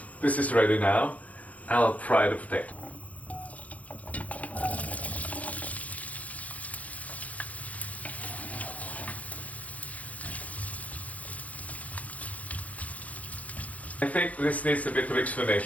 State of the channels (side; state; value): right; late; 0.069 ms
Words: This is ready now. I'll fry the potato. I think this needs a bit of